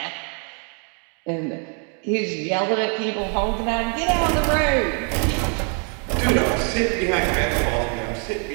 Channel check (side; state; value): left; quieter; 39.8 dB